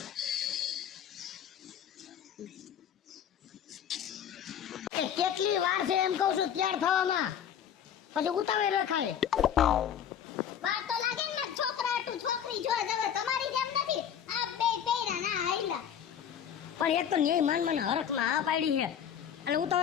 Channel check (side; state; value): right; quieter; 9.0 dB